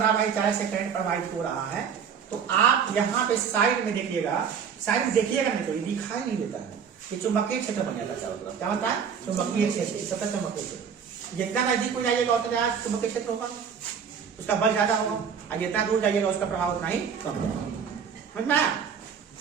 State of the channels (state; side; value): quieter; left; 7.1 dB